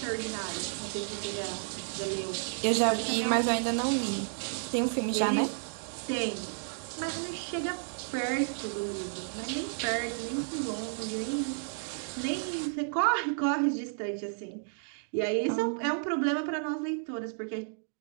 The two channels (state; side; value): silent; left; digital silence